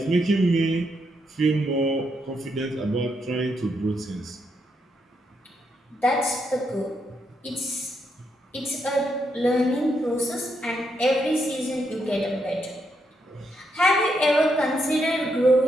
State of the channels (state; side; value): normal; both; correlation 0.79